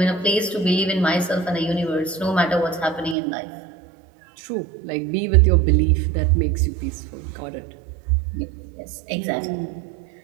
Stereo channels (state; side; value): drops out; left; at 3.2 s